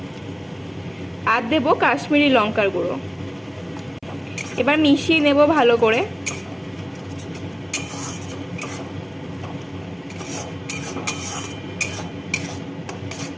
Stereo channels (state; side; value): identical; both; correlation 1.00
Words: আর দেব কাশ্মীরি লঙ্কার গুঁড়ো। এবার মিশিয়ে নেব ভালো করে।